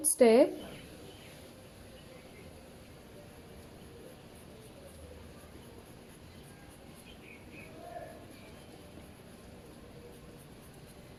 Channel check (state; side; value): identical; both; correlation 1.00